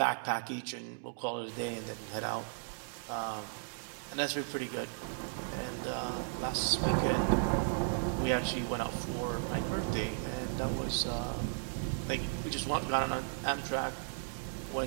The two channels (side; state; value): left; silent; digital silence